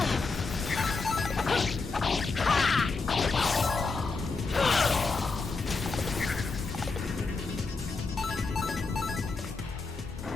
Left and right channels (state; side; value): quieter; right; 4.1 dB